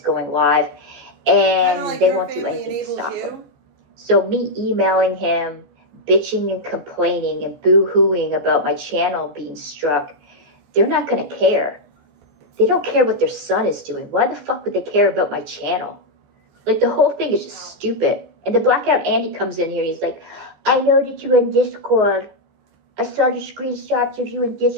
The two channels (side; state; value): left; late; 14 ms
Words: live. And like they won't do anything to stop him. So me emailing him, bitching and complaining and boo-hooing about my channel being struck, they're not going to care. They don't care what their son is doing. Why the fuck would they care about my channel? Like, the whole thing is just stupid. And the Blackout Andy comes in here and he's like, I know that you're in Discord. I saw your screenshots of you in